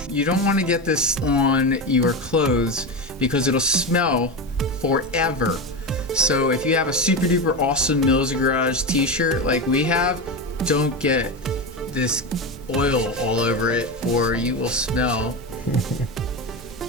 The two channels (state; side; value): normal; both; correlation 0.18